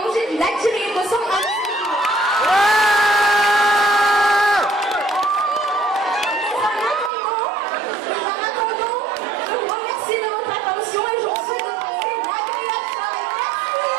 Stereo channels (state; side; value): drops out; left; at 7.1 s